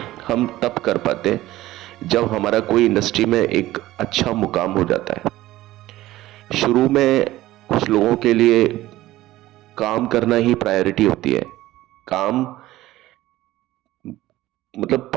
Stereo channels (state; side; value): quieter; left; 16.1 dB